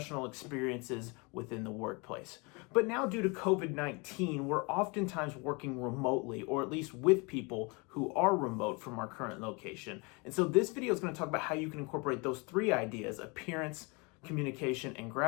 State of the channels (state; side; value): quieter; right; 29.3 dB